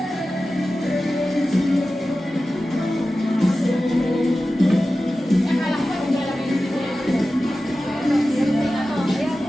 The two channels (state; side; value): normal; both; correlation 0.94